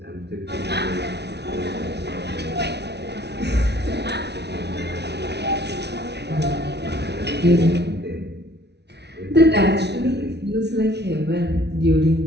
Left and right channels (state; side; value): late; left; 0.49 ms